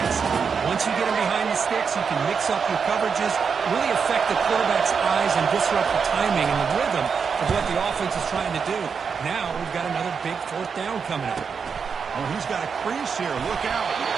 Once you get them behind the sticks, you can mix up your coverages, really affect the quarterback's eyes and disrupt the timing and the rhythm of what the offense is trying to do. Now we've got another big fourth down coming up. Oh, he's got a crease here. Look out.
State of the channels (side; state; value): left; quieter; 6.0 dB